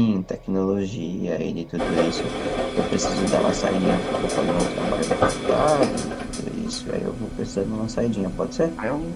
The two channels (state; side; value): identical; both; correlation 1.00